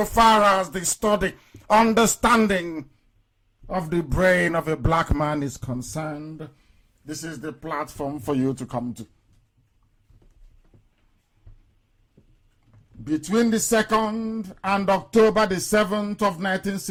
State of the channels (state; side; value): identical; both; correlation 1.00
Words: as the study, understanding of the brain of a black man is concerned, this is the platform for you to come to. Between the 2nd and October the 7th of